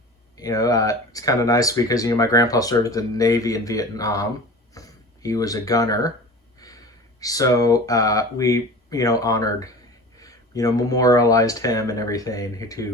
It's kind of nice because my grandpa served in the Navy in Vietnam. He was a gunner, so we honored, memorialized him and everything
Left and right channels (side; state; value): both; normal; correlation 0.37